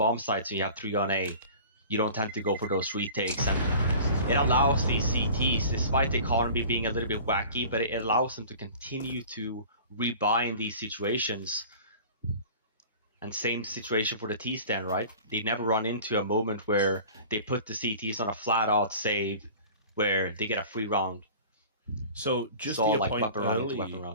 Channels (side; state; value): both; inverted; correlation -0.42